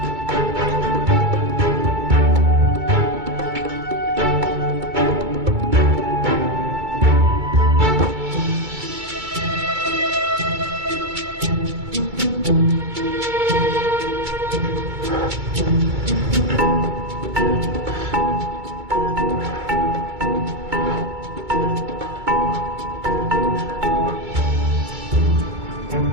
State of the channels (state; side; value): late; left; 2.2 ms